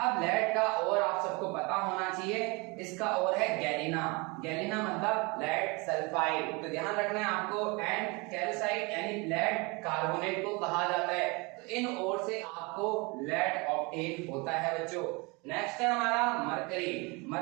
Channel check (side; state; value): left; quieter; 27.8 dB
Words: लेड का और आप सबको पता होना चाहिए, इसका और है गैलिना। गैलिना मतलब लेड सल्फाइड। तो ध्यान रखना है आपको। एंड कैल्साइट यानी लेड कार्बोनेट को कहा जाता है। तो इन ओर से आपको लेड ऑब्टेन होता है बच्चों। नेक्स्ट है हमारा मरकरी।